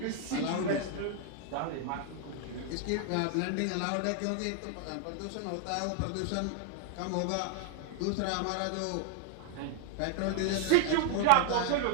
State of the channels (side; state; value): both; different; correlation 0.00